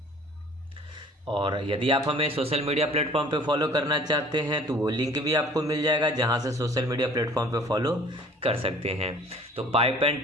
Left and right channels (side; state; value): both; normal; correlation 0.50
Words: और यदि आप हमें सोशल मीडिया प्लेटफॉर्म पे फॉलो करना चाहते हैं तो वो लिंक भी आपको मिल जाएगा, जहां से सोशल मीडिया प्लेटफॉर्म पे फॉलो कर सकते हैं। तो पाइप एंड